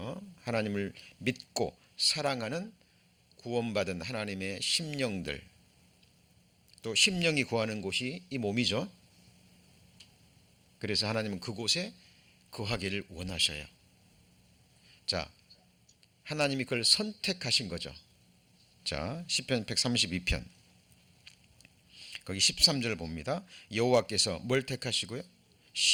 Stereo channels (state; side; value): identical; both; correlation 1.00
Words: 하나님을 믿고 사랑하는 구원받은 하나님의 심령들, 또 심령이 거하는 곳이 이 몸이죠. 그래서 하나님은 그곳에 거하기를 원하셔요. 자, 하나님이 그걸 선택하신 거죠. 자, 시편 132편 거기 13절 봅니다. 여호와께서 뭘 택하시고요?